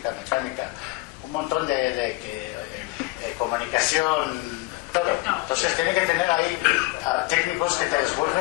mecánica, un montón de comunicación, todo. Entonces tiene que tener ahí técnicos que te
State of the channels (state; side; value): quieter; right; 22.3 dB